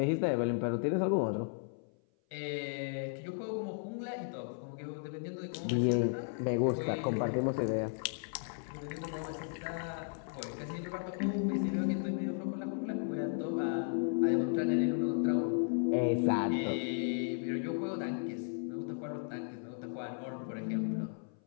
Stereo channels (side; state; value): right; silent; 54 dB below the other